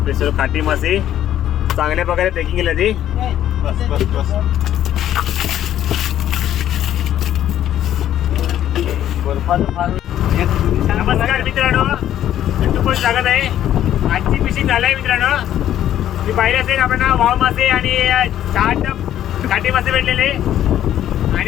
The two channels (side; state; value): right; quieter; 11.5 dB